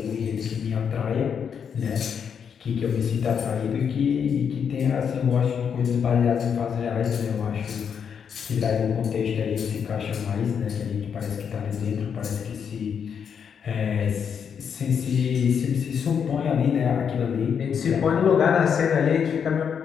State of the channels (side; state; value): right; quieter; 7.2 dB